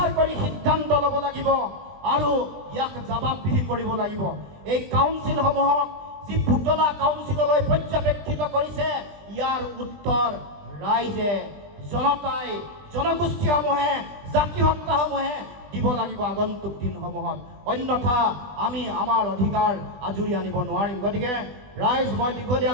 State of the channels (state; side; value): late; left; 20 ms